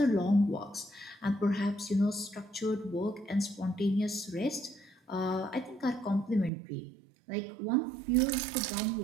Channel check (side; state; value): left; drops out; at 6.5 s